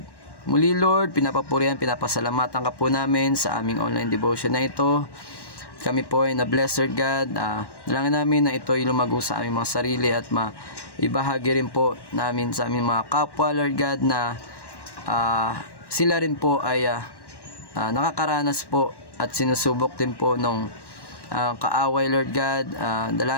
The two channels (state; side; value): late; right; 1.1 ms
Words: Muli Lord, pinapapurihan, pinapasalamatan ka po namin sa aming online devotion na ito. Kami po ay na-bless Lord God. Dalangin namin na ito ay lumago sa aming mga sarili at maibahagi rin po namin sa aming mga kapwa Lord God, na sila rin po ay nakakaranas po at sinusubok din po nung kaaway, Lord God.